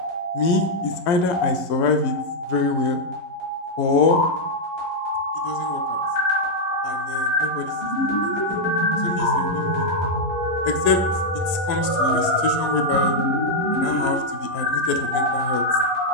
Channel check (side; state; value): right; late; 11 ms